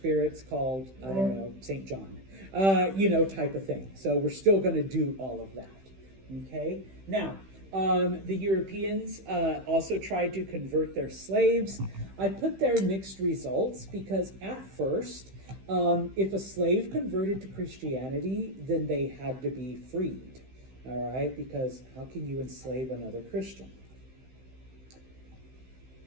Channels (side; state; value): left; late; 15 ms